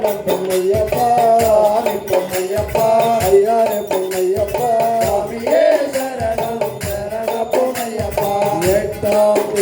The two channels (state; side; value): identical; both; correlation 1.00